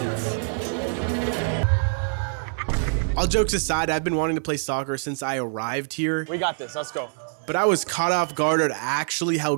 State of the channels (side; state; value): left; silent; digital silence